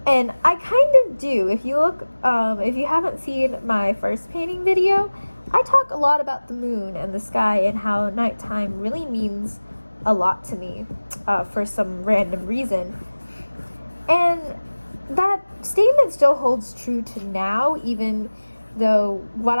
And I kind of do. If you look, if you haven't seen my first painting video, I talk a lot about the moon and the sky and how nighttime really means a lot to me for some random reason. And that statement still holds true to now, even though what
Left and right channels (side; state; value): both; inverted; correlation -1.00